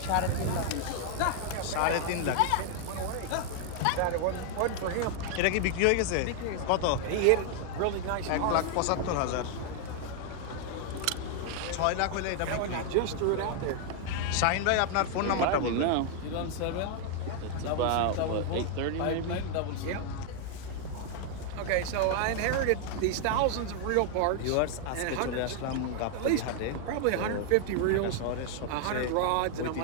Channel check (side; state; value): both; different; correlation 0.00